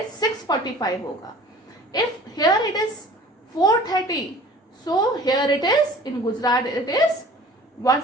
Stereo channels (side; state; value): both; normal; correlation 0.46